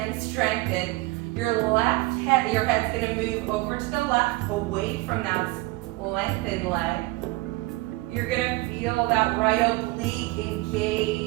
strengthen. Your head's going to move over to the left, away from that lengthened leg. You're going to feel that right oblique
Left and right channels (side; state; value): left; quieter; 21.6 dB